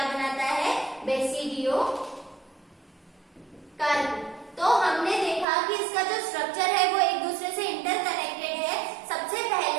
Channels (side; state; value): left; drops out; at 5.5 s